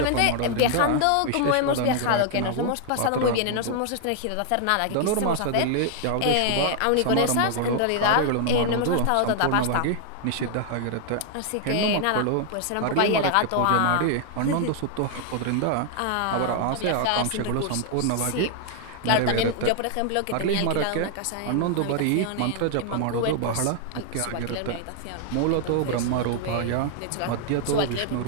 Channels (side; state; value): both; different; correlation 0.00